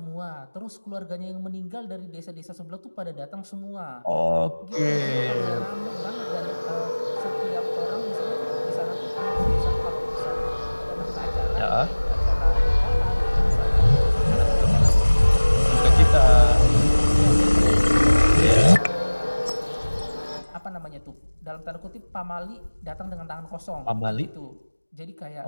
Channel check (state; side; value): inverted; both; correlation -1.00